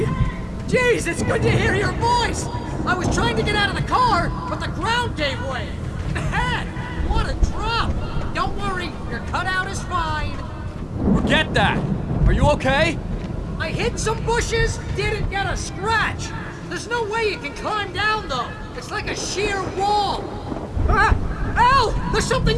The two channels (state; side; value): identical; both; correlation 1.00